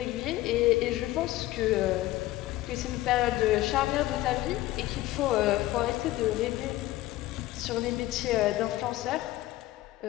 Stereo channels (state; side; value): quieter; right; 16.5 dB